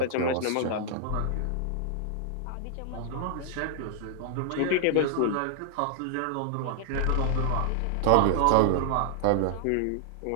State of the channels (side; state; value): both; different; correlation 0.00